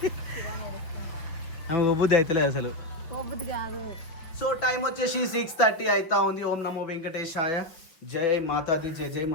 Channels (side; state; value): right; late; 5.9 ms